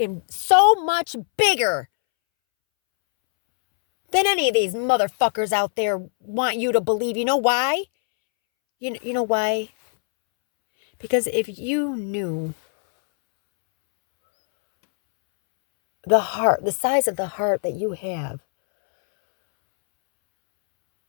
so much bigger than any of these motherfuckers out there want you to believe. You know why? You know why? Because if you knew the size of the heart that you have,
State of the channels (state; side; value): silent; right; 65 dB below the other